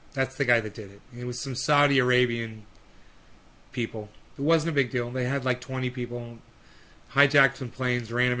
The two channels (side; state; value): both; identical; correlation 1.00